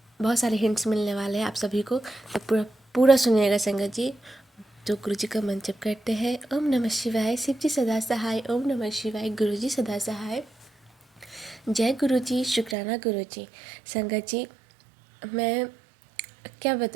बहुत सारे हिंट्स मिलने वाले हैं आप सभी को, तो पूरा पूरा सुनिएगा संगत जी। तो गुरु जी का मंत्र जप करते हैं। ओम नमः शिवाय, शिव जी सदा सहाय। ओम नमः शिवाय, गुरु जी सदा सहाय। जय गुरु जी, शुक्राना गुरु जी। संगत जी, मैं क्या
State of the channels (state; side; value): drops out; left; at 12.8 s